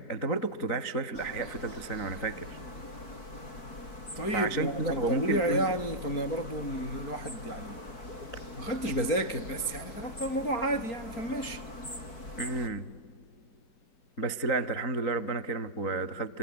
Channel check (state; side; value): late; right; 4.4 ms